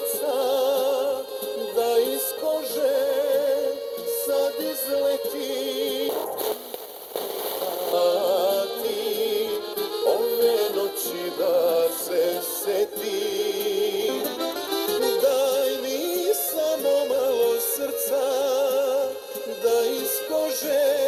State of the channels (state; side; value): identical; both; correlation 1.00